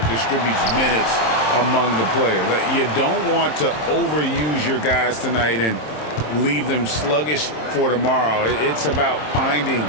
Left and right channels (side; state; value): right; late; 27 ms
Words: distributes minutes among the players. You don't want to overuse your guys tonight and leave them sluggish for tomorrow. It's about finding